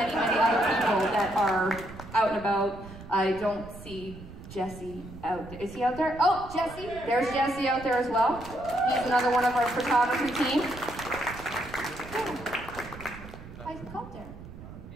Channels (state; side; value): noise; right; rumble, 15 dB below the sound